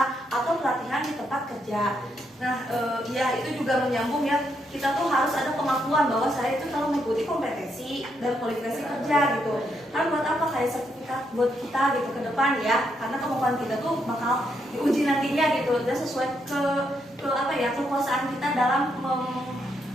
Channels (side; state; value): both; normal; correlation 0.78